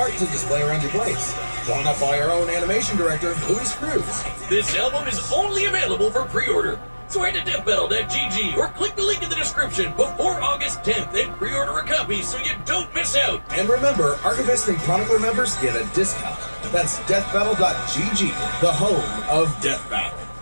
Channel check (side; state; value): both; inverted; correlation -1.00